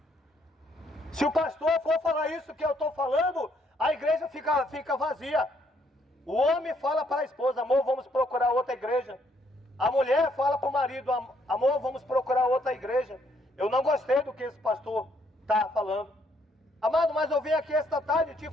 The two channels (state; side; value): normal; both; correlation 0.70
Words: Se o pastor for falar isso que eu estou falando, a igreja fica vazia. O homem fala para a esposa, amor, vamos procurar outra igreja. A mulher fala para o marido, amor, vamos procurar outra igreja. Eu não gostei do que esse pastor está falando. Amado, mas eu vim aqui esta tarde te